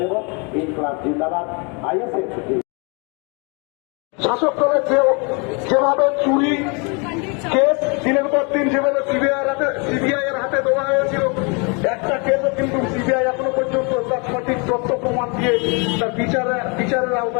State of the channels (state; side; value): quieter; right; 32.7 dB